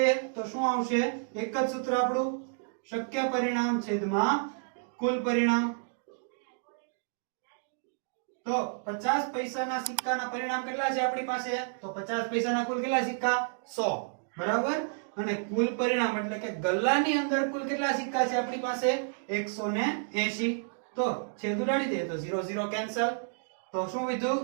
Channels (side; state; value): left; silent; digital silence